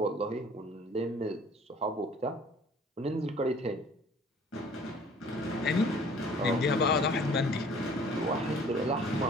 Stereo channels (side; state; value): both; normal; correlation 0.52